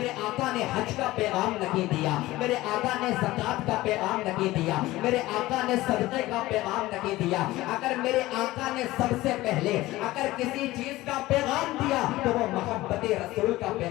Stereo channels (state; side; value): quieter; right; 17.7 dB